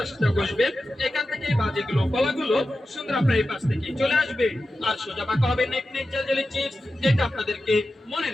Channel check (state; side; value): normal; both; correlation 0.92